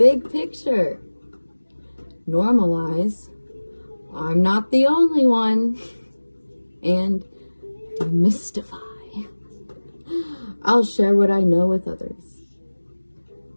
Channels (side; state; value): both; inverted; correlation -1.00